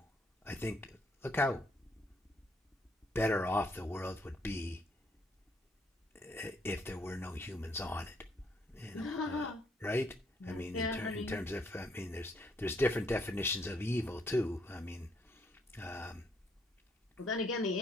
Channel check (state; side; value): normal; both; correlation 0.70